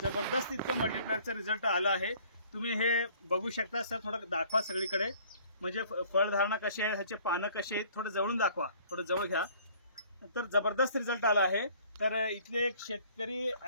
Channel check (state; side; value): inverted; both; correlation -0.55